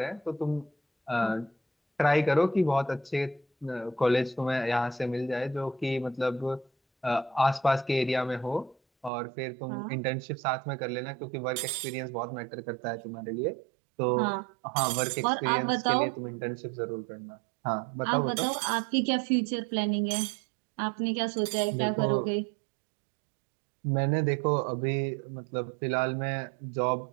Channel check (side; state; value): left; drops out; at 9.1 s